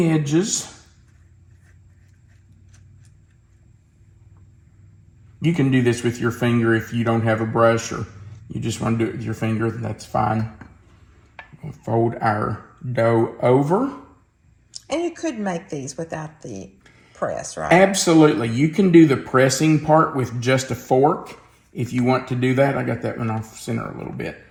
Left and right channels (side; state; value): both; identical; correlation 1.00